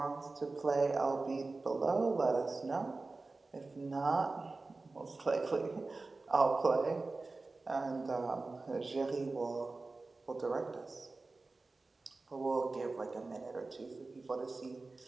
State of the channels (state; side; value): quieter; left; 3.5 dB